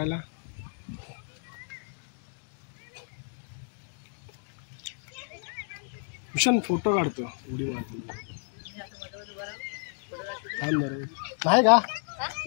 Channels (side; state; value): right; silent; 57 dB below the other